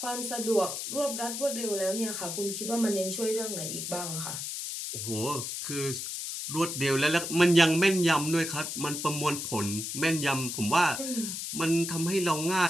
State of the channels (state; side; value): noise; left; hiss, 5 dB below the sound